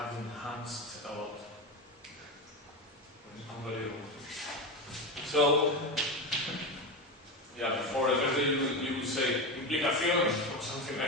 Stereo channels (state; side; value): normal; both; correlation 0.18